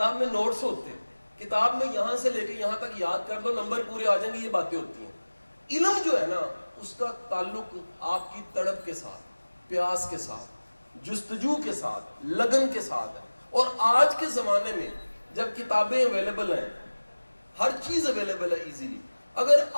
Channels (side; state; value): both; inverted; correlation -1.00